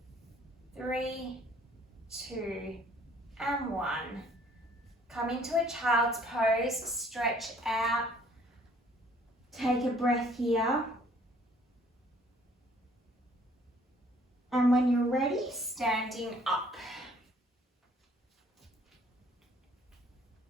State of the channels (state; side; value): normal; both; correlation 0.60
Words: 3, 2, and 1. Come into a child's pose, stretch out. Take a breath here. And when you're ready, standing up.